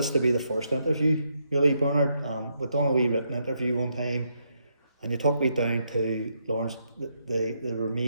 to be the first interview, really, Bernard. We've done a wee written interview one time, and you took me down to Lawrence, the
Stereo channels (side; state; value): both; inverted; correlation -0.78